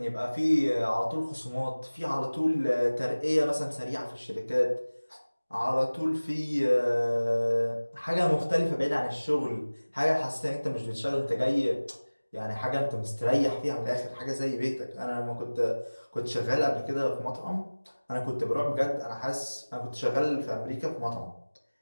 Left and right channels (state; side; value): inverted; both; correlation -1.00